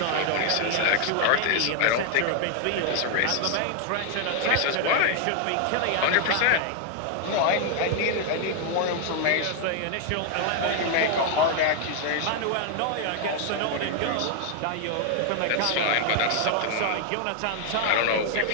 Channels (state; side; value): different; both; correlation 0.00